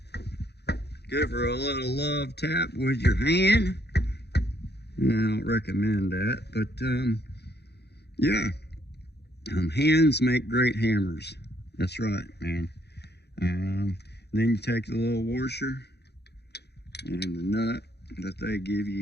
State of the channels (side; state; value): right; late; 0.48 ms